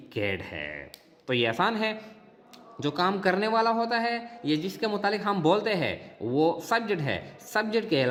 है। तो ये आसान है। जो काम करने वाला होता है, ये जिसके मुतालिक हम बोलते हैं, वो सब्जेक्ट है। सब्जेक्ट के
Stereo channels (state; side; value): identical; both; correlation 1.00